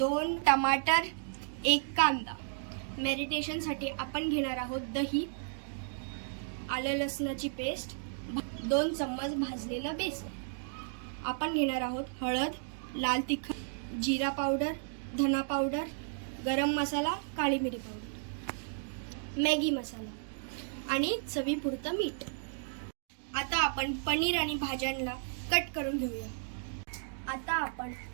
टमाटर, 1 कांदा। मॅरिनेशनसाठी आपण घेणार आहोत दही, आलं लसणाची पेस्ट, 2 चम्मच भाजलेलं बेसन। आपण घेणार आहोत हळद, लाल तिखट, जीरा पावडर, धना पावडर, गरम मसाला, काळी मिरी पावडर, मॅगी मसाला आणि चवीपुरतं मीठ। आता आपण पनीर आणि भाज्यांना कट करून घेऊया। आता आपण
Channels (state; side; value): silent; left; digital silence